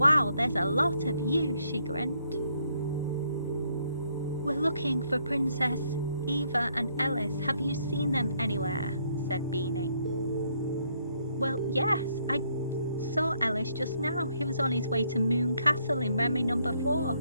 there's a lot of you, she grinned. We're looking for Princess Eva and Ellis. Have you seen them anywhere? Said Beanie. Well, yes, I saw Ellis just now. He was on his way to Moon Castle in Remy number 4,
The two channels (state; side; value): inverted; both; correlation -0.71